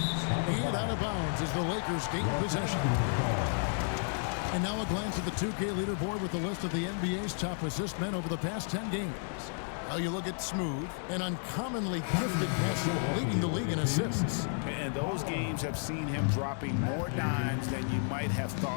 And out of bounds as the Lakers gain possession. And now a glance at the 2K leaderboard with the list of the NBA's top assist men over the past 10 games. Now you look at Smooth, an uncommonly gifted passer leading the league in assists. And those games have seen him dropping more dimes than you might have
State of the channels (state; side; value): silent; right; 56 dB below the other